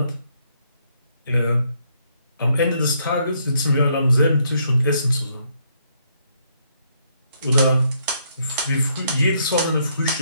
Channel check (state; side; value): inverted; both; correlation -0.72